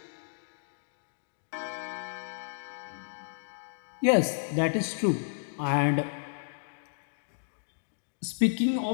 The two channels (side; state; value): right; silent; digital silence